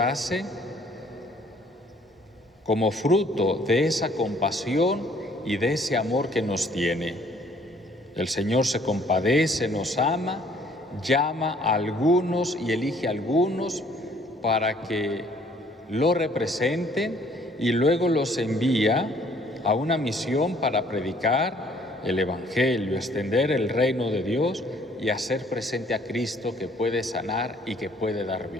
como fruto de esa compasión y de ese amor que nos tiene. El Señor se compadece, nos ama, llama a algunos y elige a algunos para que lo representen y luego los envía a una misión para predicar el Evangelio, extender el reino de Dios y hacer presente a Cristo, que puede sanar y que puede dar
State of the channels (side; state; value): both; normal; correlation 0.60